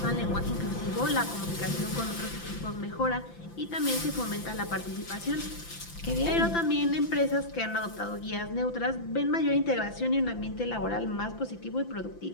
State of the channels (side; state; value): right; late; 5.9 ms